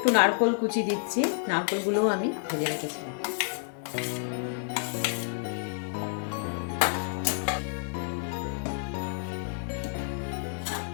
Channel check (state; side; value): silent; right; 58 dB below the other